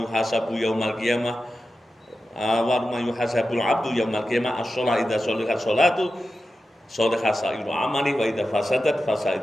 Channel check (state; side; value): normal; both; correlation 0.92